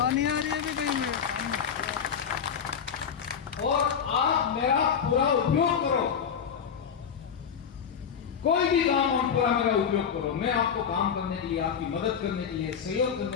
और आप मेरा पूरा उपयोग करो, कोई भी काम हो पूरा मेरा उपयोग करो। मैं आपको काम करने के लिए, आपकी मदद करने के लिए, सहयोग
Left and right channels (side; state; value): right; quieter; 7.4 dB